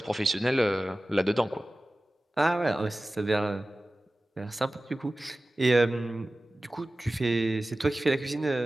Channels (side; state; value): both; normal; correlation 0.96